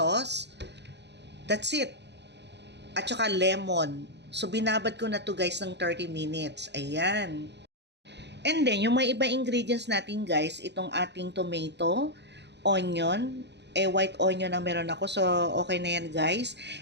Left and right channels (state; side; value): late; left; 0.50 ms